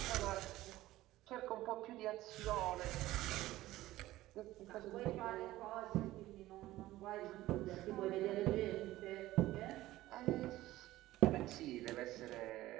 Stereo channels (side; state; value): left; quieter; 16.2 dB